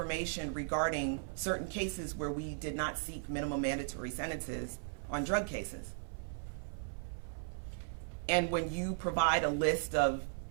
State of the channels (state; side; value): silent; left; 53 dB below the other